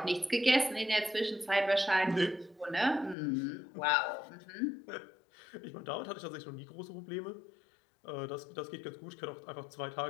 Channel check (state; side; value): drops out; right; at 3.2 s